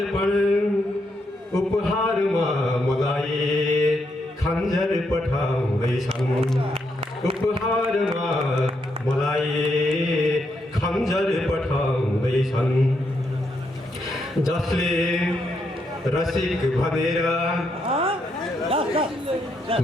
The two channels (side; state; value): both; normal; correlation 0.79